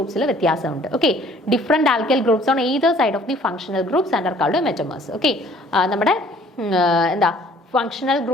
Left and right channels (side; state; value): both; normal; correlation 0.56